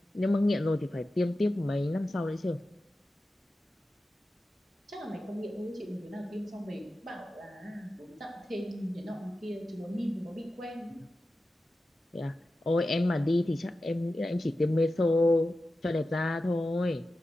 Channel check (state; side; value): normal; both; correlation 0.93